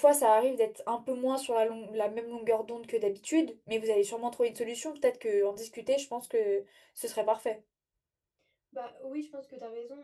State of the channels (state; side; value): identical; both; correlation 1.00